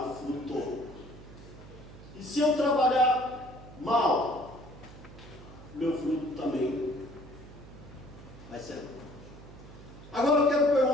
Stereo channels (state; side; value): noise; right; hum, 17 dB below the sound